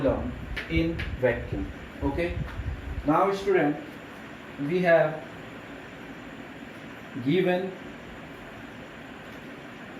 in vacuum. Okay. Now student, we have given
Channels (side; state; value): both; identical; correlation 1.00